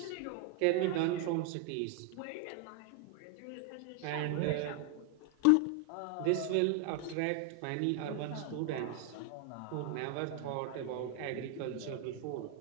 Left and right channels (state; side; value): different; both; correlation 0.00